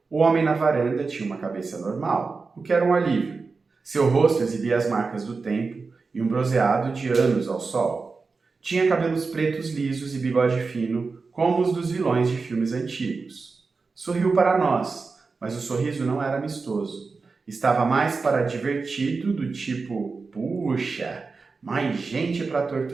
O homem na varanda tinha uma cabeça normal, o que era um alívio. Seu rosto exibia as marcas do tempo e um bronzeado de anos ao sol. Tinha cabelos pretos lisos e bigode fino, como os dos vilões de filmes antigos. Sorriu para nós, mas o sorriso não era amistoso. Estava mais para divertido, do tipo, puxa, mais gente para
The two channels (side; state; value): left; quieter; 4.4 dB